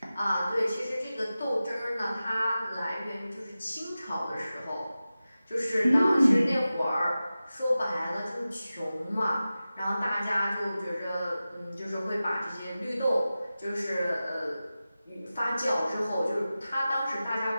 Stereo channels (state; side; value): inverted; both; correlation -0.95